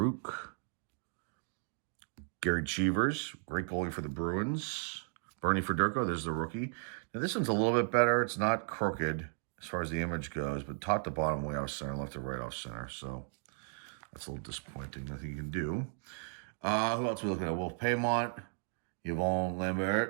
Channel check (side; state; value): left; silent; digital silence